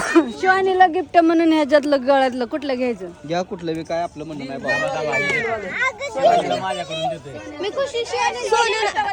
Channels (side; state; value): both; identical; correlation 1.00